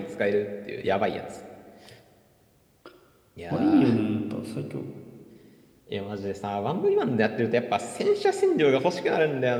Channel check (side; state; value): both; identical; correlation 1.00